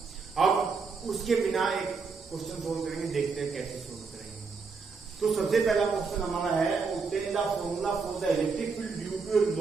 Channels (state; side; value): quieter; left; 4.8 dB